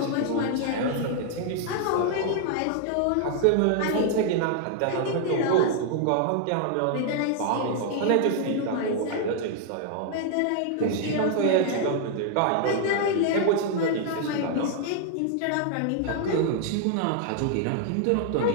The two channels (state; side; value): different; both; correlation 0.00